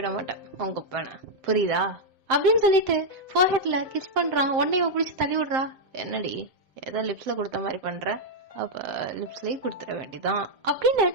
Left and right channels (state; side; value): late; left; 7.7 ms